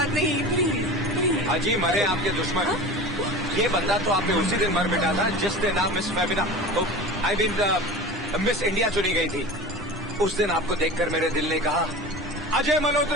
नहीं। प्लीज अजी मरे आपके दुश्मन। ये बंदा तो आपने उसी दिन मर मिटा था जिस दिन आप miss Femina, I mean miss India चुनी गई थी। उस दिन आपको देखकर मेरे दिल ने कहा, अजय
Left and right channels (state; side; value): normal; both; correlation 0.34